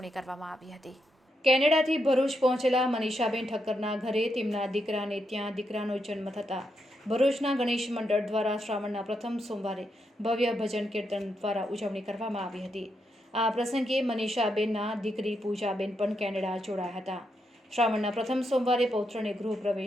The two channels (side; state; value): both; normal; correlation 0.82